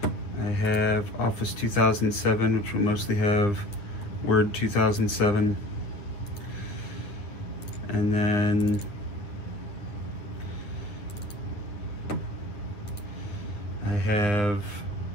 I have Office 2007, which will mostly have Word 2007. And then I have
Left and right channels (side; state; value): right; late; 9.4 ms